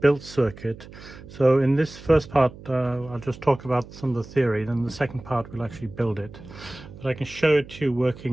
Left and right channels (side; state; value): right; noise; hum, 17 dB below the sound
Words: circuit. So in this first part, I'll just talk about some of the theory. Then the second part, we'll actually build it. But I can show it to you